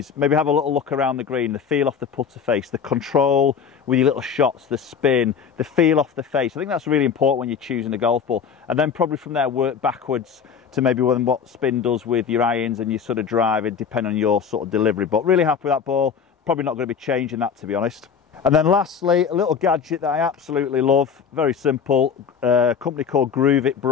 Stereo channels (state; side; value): quieter; right; 6.8 dB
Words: maybe have a little look around the green, the feel off the putter face, the control with your little shots, the spin, the feel off the face. I think that's really important when you're choosing a golf ball. And then probably from there work backwards to maybe what spin does with your irons and your sort of driving, depending on your sort of delivery. But really happy with that ball. Probably not going to be changing that, to be honest. And then lastly, a little gadget that I absolutely love, very simple, a company called